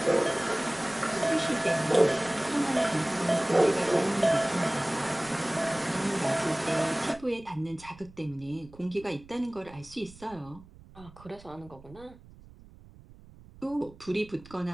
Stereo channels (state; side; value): noise; right; rumble, 22 dB below the sound